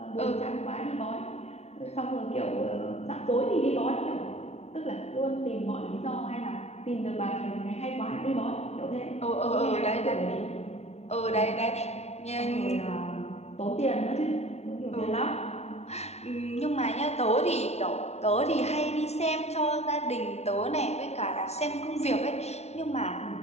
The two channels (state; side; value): late; right; 0.31 ms